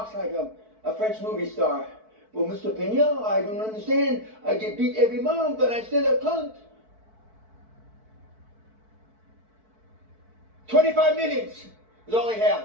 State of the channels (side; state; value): left; late; 4.6 ms